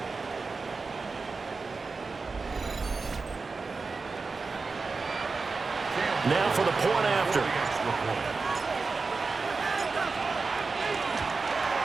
Now for the point after.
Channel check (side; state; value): left; quieter; 4.3 dB